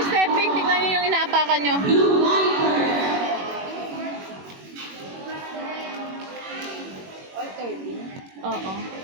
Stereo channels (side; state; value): left; late; 21 ms